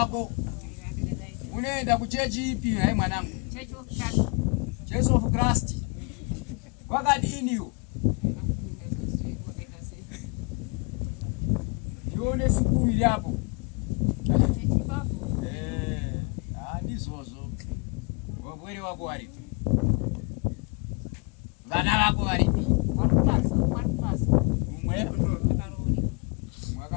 Unoenda kuchechi ipi hai mwanangu? Church of Christ. Wakadini yo? Yone sukuru ili hapo. Handizozo. Wabwere wako waripi? Vana wako waripi? Umwe?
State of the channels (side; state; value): right; quieter; 32.5 dB